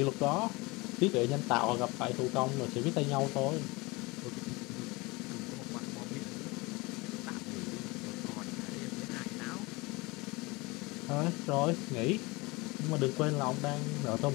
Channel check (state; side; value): quieter; right; 24.2 dB